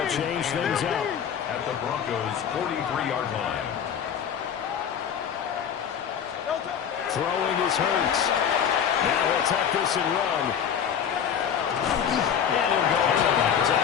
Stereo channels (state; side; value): quieter; right; 8.2 dB